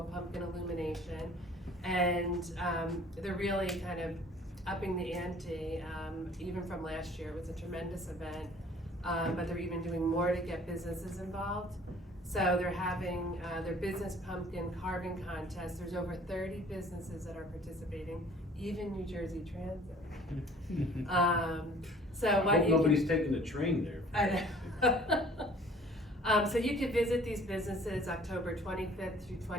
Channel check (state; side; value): normal; both; correlation 0.53